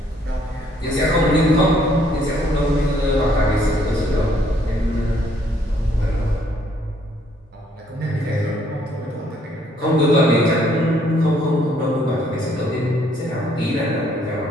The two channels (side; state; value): both; normal; correlation 0.66